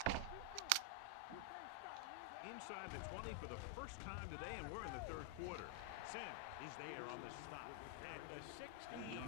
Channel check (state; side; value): different; both; correlation 0.00